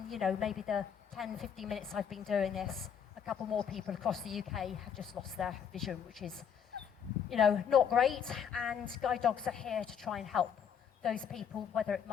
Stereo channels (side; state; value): right; quieter; 7.8 dB